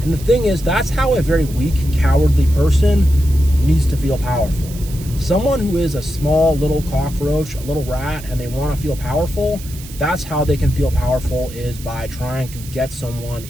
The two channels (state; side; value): noise; right; hiss, 16 dB below the sound